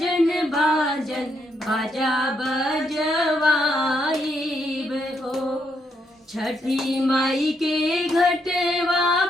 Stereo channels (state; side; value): normal; both; correlation 0.77